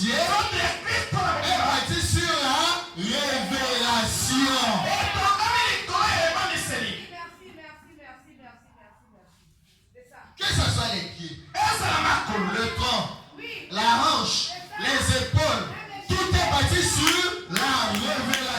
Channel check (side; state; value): both; identical; correlation 1.00